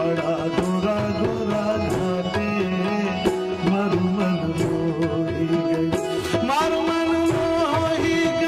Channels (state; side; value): identical; both; correlation 1.00